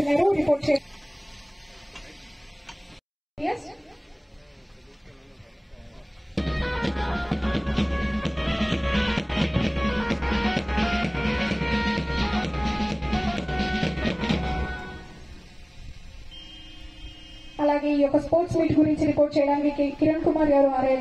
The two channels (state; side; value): identical; both; correlation 1.00